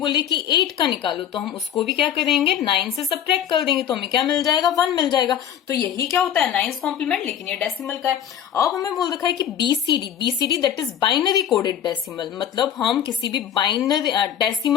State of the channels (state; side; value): quieter; right; 9.5 dB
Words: कि 8 का निकालो, तो हम उसको भी क्या करेंगे, 9 से सब्ट्रैक्ट कर देंगे, तो हमें क्या मिल जाएगा, 1 मिल जाएगा। तो यही क्या होता है, नाइन्थ कॉम्प्लीमेंट, लेकिन ये डेसिमल का है। अब हमें बोल रखा है कि BCD that is binary coded decimal. मतलब हम किसी भी बाइनरी